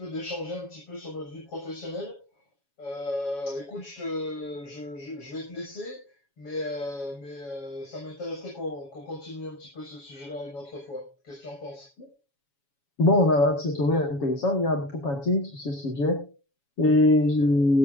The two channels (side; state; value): right; late; 7.2 ms